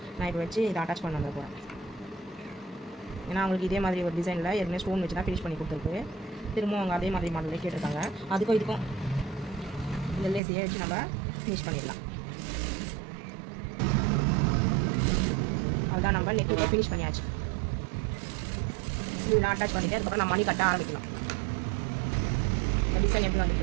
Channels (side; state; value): left; drops out; at 10.4 s